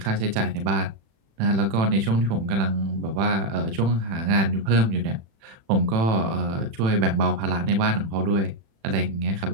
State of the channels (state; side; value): late; left; 36 ms